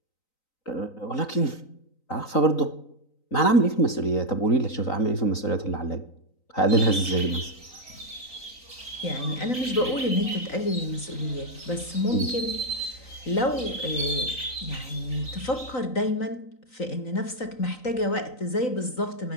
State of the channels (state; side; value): late; right; 3.9 ms